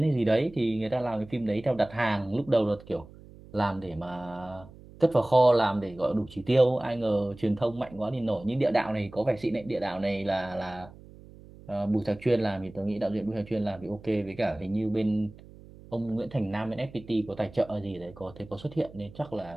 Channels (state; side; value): noise; right; hum, 20 dB below the sound